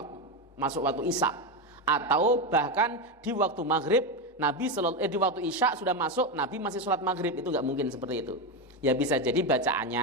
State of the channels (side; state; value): both; normal; correlation 0.12